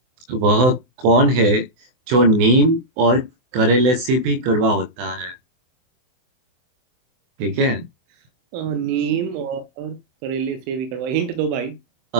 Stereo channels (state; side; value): late; left; 24 ms